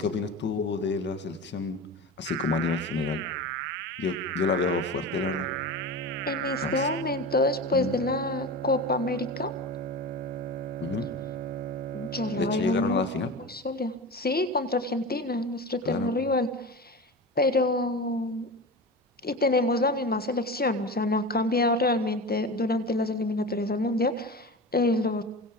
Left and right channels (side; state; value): both; normal; correlation 0.29